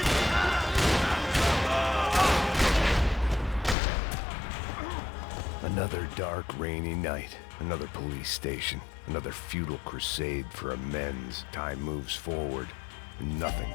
Another dark, rainy night. Another police station. Another futile crusade for amends. Time moves forward, and nothing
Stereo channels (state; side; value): drops out; right; at 3.8 s